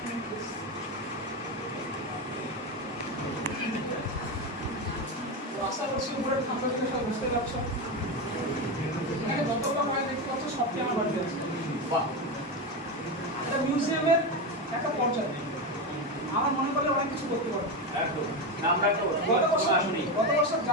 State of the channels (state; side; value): normal; both; correlation 0.15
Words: আশা করছি উপরে ঠান্ডা দিনে সব বুঝতে পারছো। এখানে যতগুলো হয় দেখতে পাচ্ছ সবটি আমার বাড়িতে আছে। এটা মিউজিয়ামের একটা পর্যায়, আমার মনে করলে অনেক কিছু করতে পারো। একদম আমরা একটা গত বছর